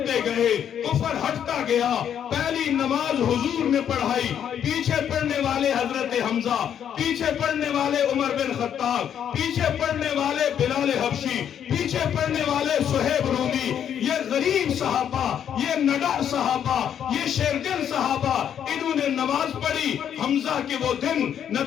گئے، کفر ہٹتا گیا، پہلی نماز حضور نے پڑھائی، پیچھے پڑھنے والے حضرت حمزہ، پیچھے پڑھنے والے عمر بن خطاب، پیچھے پڑھنے والے بلال حبشی، پیچھے پڑھنے والے صہیب رومی، یہ غریب صحابہ، یہ نڈر صحابہ، یہ شیرگن صحابہ، انہوں نے نماز پڑھی۔ حمزہ کے وہ دن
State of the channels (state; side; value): quieter; right; 9.1 dB